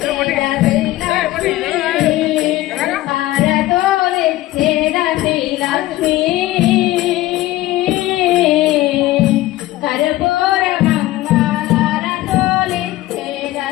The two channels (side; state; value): right; quieter; 16.5 dB